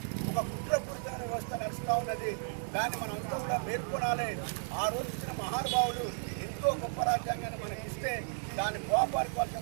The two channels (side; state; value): left; silent; digital silence